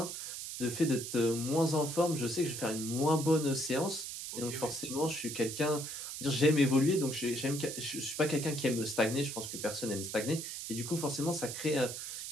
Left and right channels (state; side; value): noise; right; hiss, 7 dB below the sound